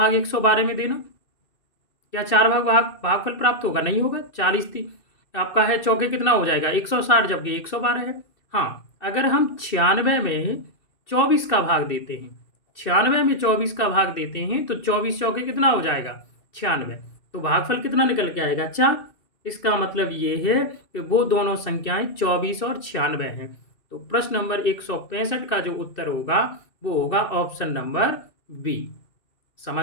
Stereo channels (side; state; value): right; late; 2.6 ms